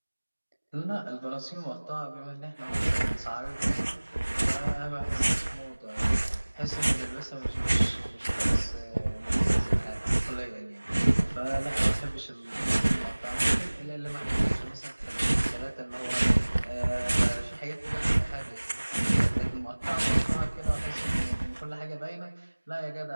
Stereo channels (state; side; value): inverted; both; correlation -1.00